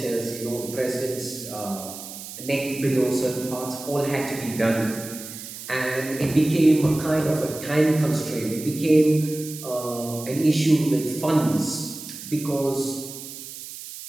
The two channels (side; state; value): right; noise; hiss, 12 dB below the sound